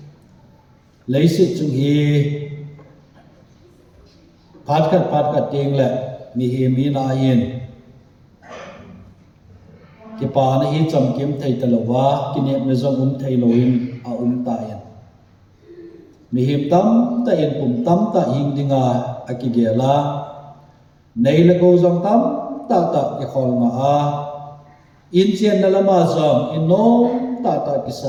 leisit chung hi patkat ting le mi hi mi na yin ki pa na hi cham kim thei talowa kinep na zong thei loin a ta yin mi him tam ta yin pum tam ta hing dinga akigela nei la go zong tam ta ki khol nga a in chen na lama zong in no ta ki sa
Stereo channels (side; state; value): both; identical; correlation 1.00